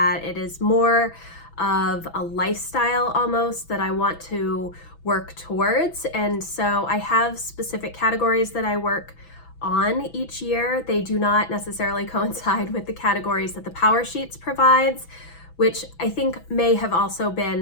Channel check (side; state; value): right; late; 6.0 ms